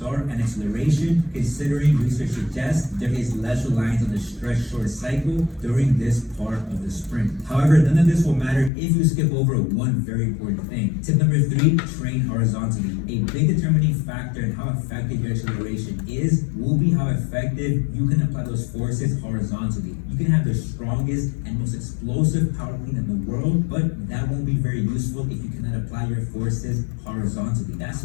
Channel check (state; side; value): drops out; right; at 8.7 s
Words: and acceleration, considering research suggests there is less reliance on the stretch short cycle during this part of the sprint. However, none of this will matter if you skip over one very important thing. Tip number 3, train horizontally. A big determining factor in how effective your acceleration is will be how effective you can apply those forces horizontally. You can have the strongest and most explosive power clean in the world, but that won't be very useful if you cannot apply your forces horizontally. That's